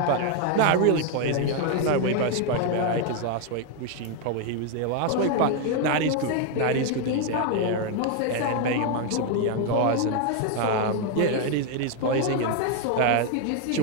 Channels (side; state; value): both; different; correlation 0.01